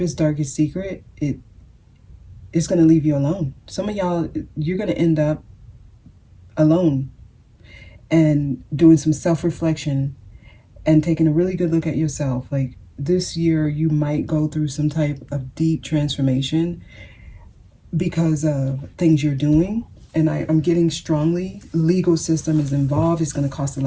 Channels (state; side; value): identical; both; correlation 1.00